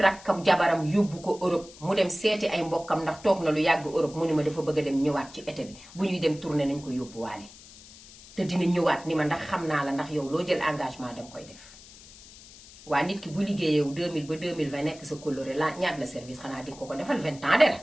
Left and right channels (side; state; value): left; noise; hiss, 20 dB below the sound